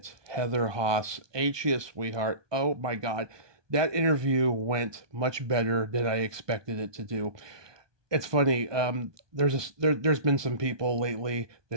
Heather Haase, ain't you a sweetheart? Oh my God. That interview went much better than I expected it to do. It's funny. There's been some people lately that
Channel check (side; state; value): left; late; 1.2 ms